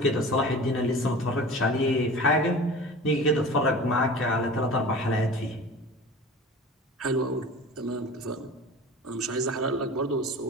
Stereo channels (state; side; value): normal; both; correlation 0.38